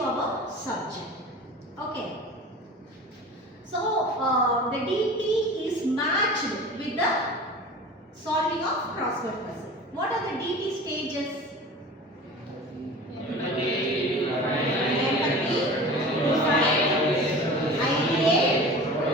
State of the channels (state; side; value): normal; both; correlation 0.37